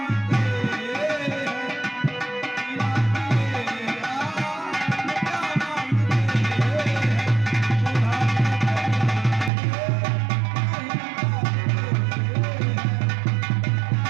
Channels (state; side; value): drops out; left; at 9.5 s